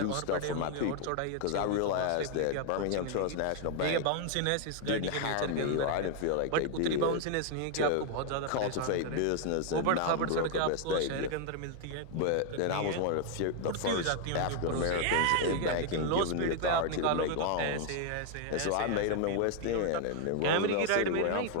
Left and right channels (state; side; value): different; both; correlation 0.00